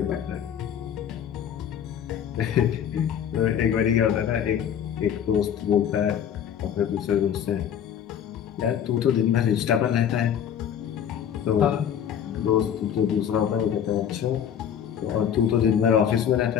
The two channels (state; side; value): quieter; right; 9.0 dB